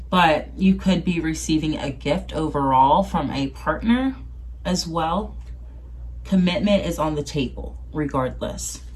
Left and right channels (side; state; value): both; identical; correlation 1.00